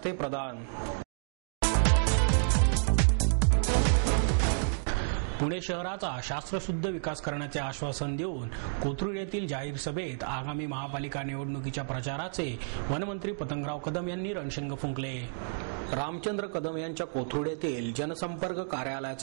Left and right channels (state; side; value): silent; left; digital silence